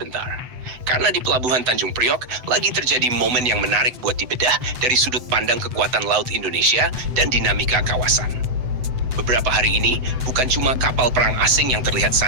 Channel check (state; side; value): late; left; 7.9 ms